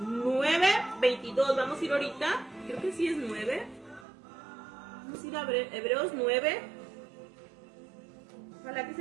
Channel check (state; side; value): drops out; left; at 4.0 s